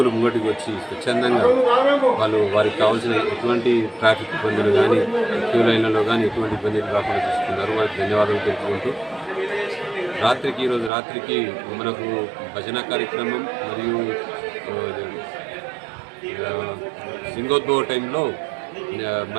ముంగటికి వచ్చి స్వచ్ఛందంగా వాళ్ళు వారికి కావాల్సిన ఎటువంటి ట్రాఫిక్ ఇబ్బందులు కానీ క్యూ లైన్లలో కానీ ఎటువంటి ఇబ్బందులు రాకుండా చూసుకున్నారు. వారికి ధన్యవాదాలు తెలుపుకుంటూ ఈరోజు రాత్రికి మనకు భజన కార్యక్రమం మరియు సింగోద్భవ టైంలో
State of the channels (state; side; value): drops out; left; at 10.9 s